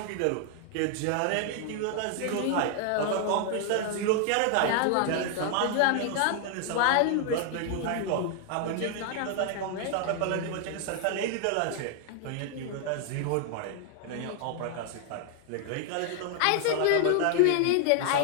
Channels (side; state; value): both; different; correlation 0.00